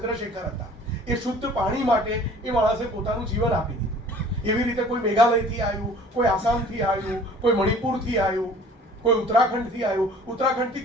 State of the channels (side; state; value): both; normal; correlation 0.49